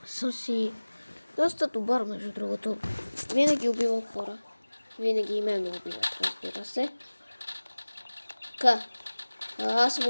съм си доста добър, между другото. Винаги убивам хора. Винаги и мен ме убиват, разбира се. Така. Аз съм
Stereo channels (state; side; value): inverted; both; correlation -1.00